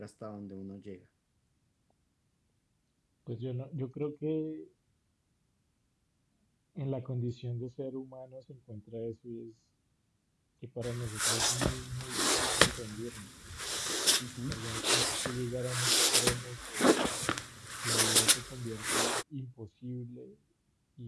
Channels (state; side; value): identical; both; correlation 1.00